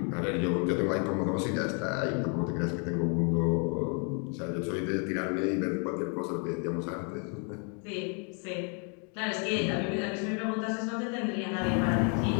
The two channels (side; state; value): right; quieter; 39.1 dB